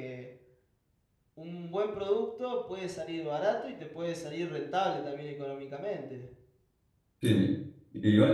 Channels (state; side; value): identical; both; correlation 1.00